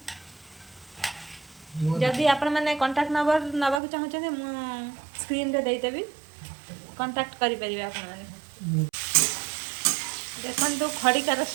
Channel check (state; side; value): drops out; left; at 3.8 s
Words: जदि आपण मैंने कांटेक्ट नंबर नवाक चाहते स्क्रीन रे देदेवी कांटेक्ट करि परिबे आपण माने देखन तो खड़िकार